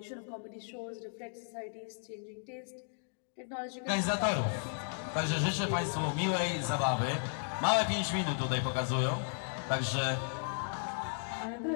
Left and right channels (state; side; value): silent; right; digital silence